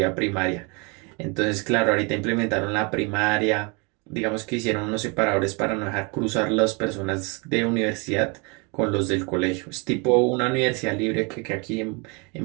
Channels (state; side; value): quieter; left; 31.1 dB